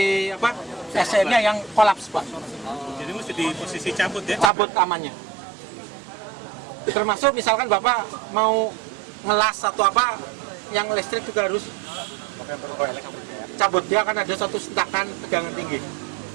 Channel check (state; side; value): drops out; left; at 4.5 s